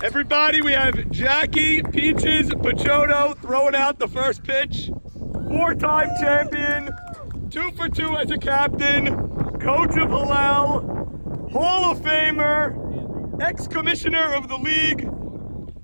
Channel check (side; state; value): both; inverted; correlation -1.00